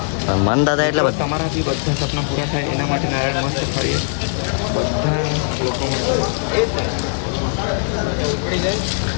મન દાદા એટલે એટલે તમારાથી બધા સપના પૂરા થાય એના માટે નારિયેળ મસ્ત ફાડીએ બધા લોકો માટે.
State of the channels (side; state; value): right; silent; 64 dB below the other